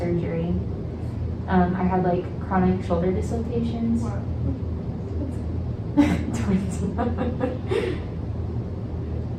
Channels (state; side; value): identical; both; correlation 1.00